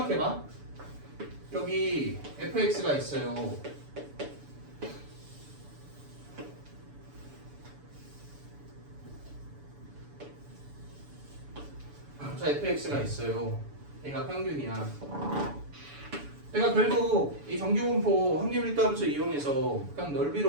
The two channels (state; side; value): late; left; 7.0 ms